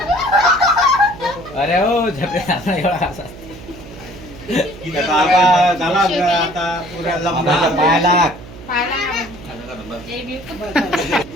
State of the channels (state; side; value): noise; right; hum, 16 dB below the sound